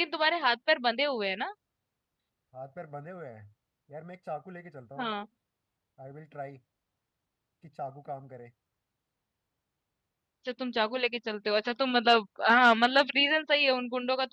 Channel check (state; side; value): identical; both; correlation 1.00